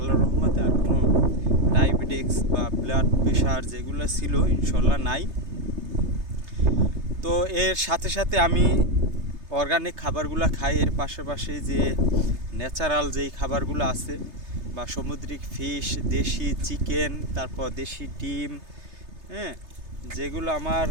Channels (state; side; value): late; left; 3.3 ms